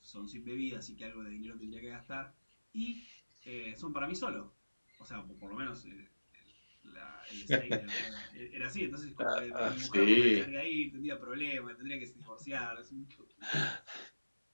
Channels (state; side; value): inverted; both; correlation -1.00